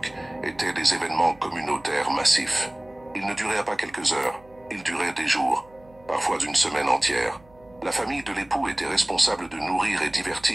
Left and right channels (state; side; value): noise; right; hum, 27 dB below the sound